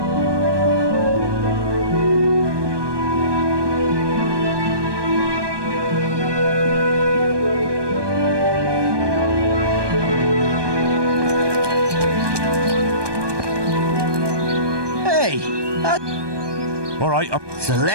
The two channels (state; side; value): late; left; 1.2 ms